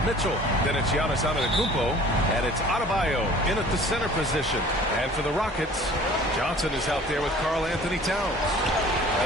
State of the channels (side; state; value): both; normal; correlation 0.48